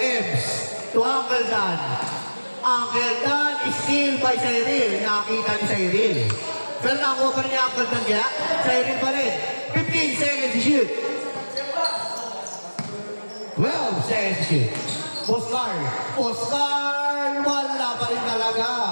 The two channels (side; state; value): both; inverted; correlation -1.00